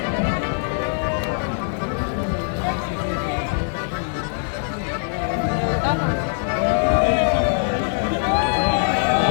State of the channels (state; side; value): silent; right; 64 dB below the other